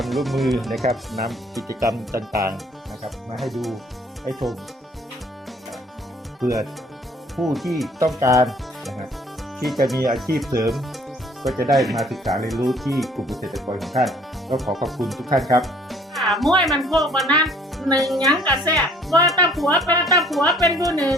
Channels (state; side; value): normal; both; correlation 0.57